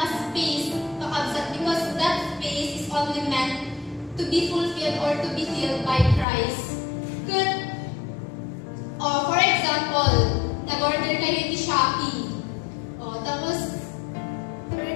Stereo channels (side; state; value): right; drops out; at 6.2 s